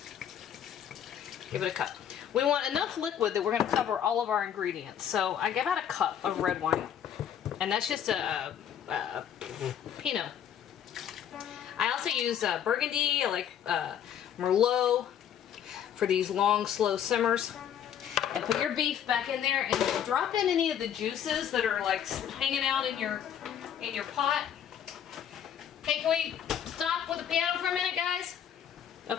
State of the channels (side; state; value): right; quieter; 9.4 dB